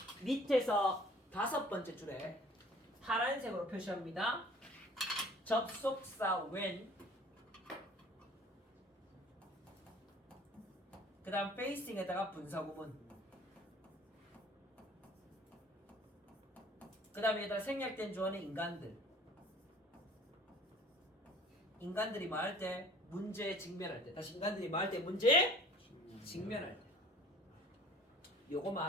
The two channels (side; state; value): both; normal; correlation 0.50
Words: 밑에서 5번째 줄에 파란색으로 표시합니다. 접속사 when. 그 다음 facing에다가 분사구문. 그 다음에 여기다 생략된 주어는 인간들. 인간들이 말할 때 문제에 직면할 때. 다시 인간들이 말할 때 문제에 직면할 때. 요거만